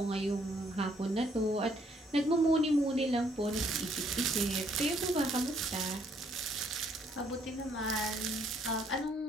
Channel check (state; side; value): normal; both; correlation 0.67